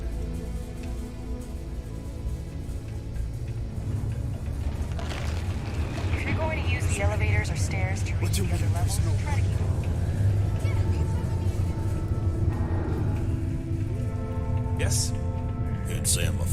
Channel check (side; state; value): both; identical; correlation 1.00